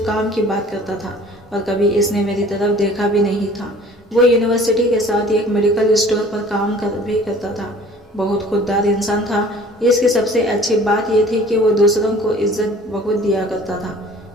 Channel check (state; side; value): normal; both; correlation 0.49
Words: کام کی بات کرتا تھا اور کبھی اس نے میری طرف دیکھا بھی نہیں تھا۔ وہ یونیورسٹی کے ساتھ ایک میڈیکل اسٹور پر کام بھی کرتا تھا، بہت خوددار انسان تھا۔ اس کی سب سے اچھی بات یہ تھی کہ وہ دوسروں کو عزت بہت دیا کرتا تھا۔